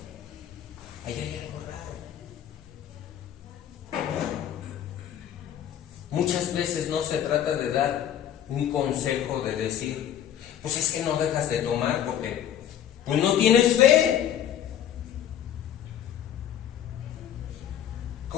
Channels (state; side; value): quieter; right; 10.3 dB